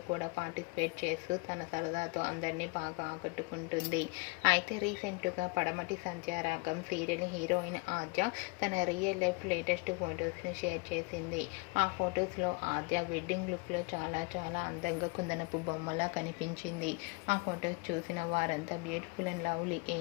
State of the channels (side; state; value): right; quieter; 29.5 dB